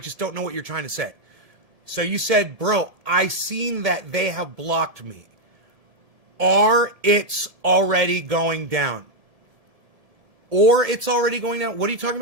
don't know what you're trying to say. So you said, bro, I seen that they have blocked me. Or it's already going down. Or it's already going down. What are you talking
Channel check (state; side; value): late; left; 1.7 ms